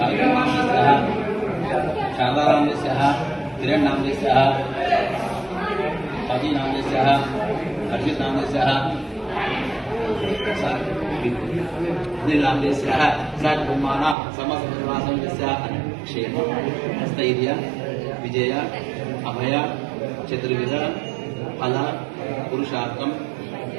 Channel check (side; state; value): left; drops out; at 14.2 s